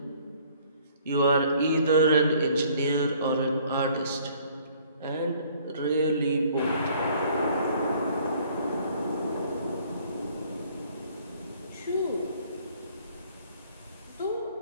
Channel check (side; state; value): both; inverted; correlation -0.58